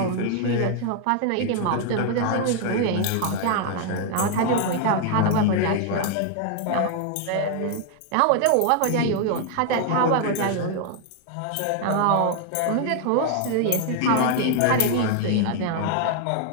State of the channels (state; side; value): different; both; correlation 0.00